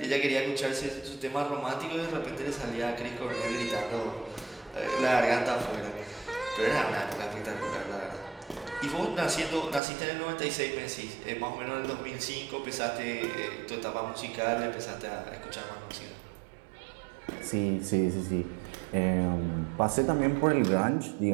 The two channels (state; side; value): drops out; left; at 9.8 s